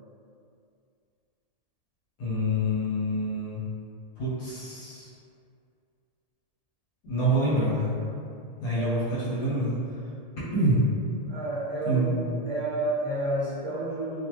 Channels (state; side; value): late; right; 1.8 ms